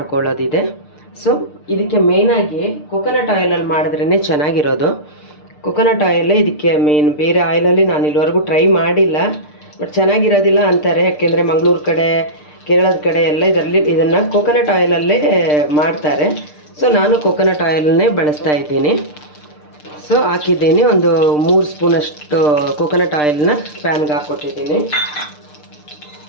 ಸೊ ಇದಕ್ಕೆ ಮೇಯ್ನಾಗಿ ಕೊಕೊನಟ್ ಆಯಿಲಲ್ಲಿ ಮಾಡಿದ್ರೇ ಚೆನ್ನಾಗಿರೋದು. ಕೊಕೊನಟ್ ಆಯಿಲೇ ಇದಕ್ಕೆ ಮೇನ್. ಬೇರೆ ಆಯಿಲಲ್ಲಿ ನಾನು ಇಲ್ಲಿವರೆಗೂ ಟ್ರೈ ಮಾಡಿಲ್ಲ, ಬಟ್ ಚೆನ್ನಾಗಿರೋದಿಲ್ಲ ಅಂತಾರೆ. ಯಾಕೆಂದರೆ ಮಂಗಳೂರು ಕಡೆ, ಕೇರಳದ ಕಡೆ ಎಲ್ಲ ಇದನ್ನು ಕೊಕೊನಟ್ ಆಯಿಲಲ್ಲೇ ಮಾಡ್ತಾರೆ. ಸೊ ನಾನು ಕೊಕೊನಟ್ ಆಯಿಲನ್ನೇ ಬಳಸ್ತಾ ಇದ್ದೀನಿ. ಸೊ ಹಾಕಿದ್ದೀನಿ. ಒಂದು 3 ಸ್ಪೂನಷ್ಟು ಕೋಕೋನಟ್ ಆಯಿಲ್ನ ಪ್ಯಾನ್ಗೆ ಹಾಕ್ಕೊಟ್ಟಿದ್ದೀನಿ.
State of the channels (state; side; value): late; right; 6.7 ms